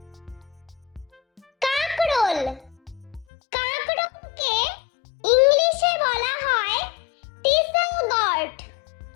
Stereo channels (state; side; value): drops out; right; at 3.2 s